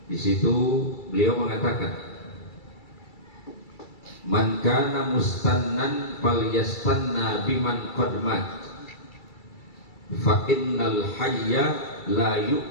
Di situ beliau mengatakan, man kana mustannan falyastanna biman qad mat fa innal hayya la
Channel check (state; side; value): late; right; 2.3 ms